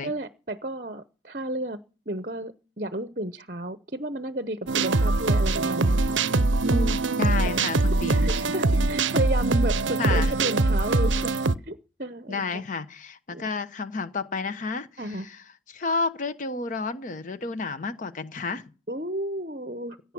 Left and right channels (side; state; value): both; normal; correlation 0.48